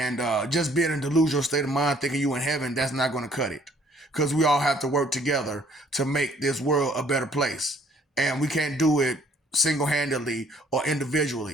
just being in a delusional state of mind, thinking you in heaven, that's not going to cut it. Because we all have to work together to make this world a better place. And we can't do it single handedly or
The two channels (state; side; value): normal; both; correlation 0.61